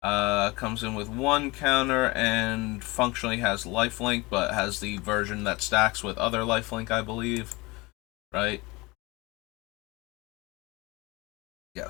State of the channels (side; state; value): right; quieter; 24.0 dB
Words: comes in with 1 counter and functionally has lifelink, but has the version that stacks with other lifelink, I believe. Right?